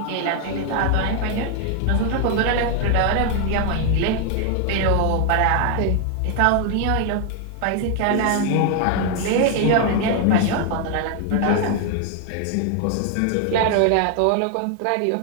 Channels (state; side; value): different; both; correlation 0.00